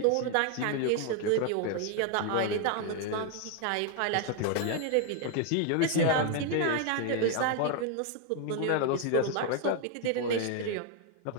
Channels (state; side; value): different; both; correlation 0.00